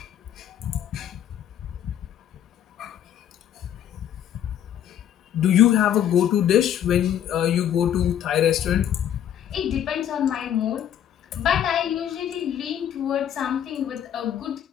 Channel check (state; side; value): quieter; right; 10.1 dB